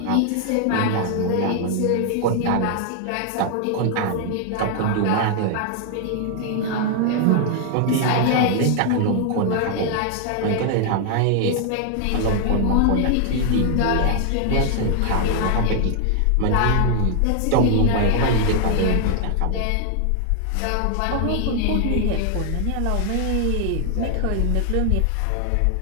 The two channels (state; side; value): different; both; correlation 0.00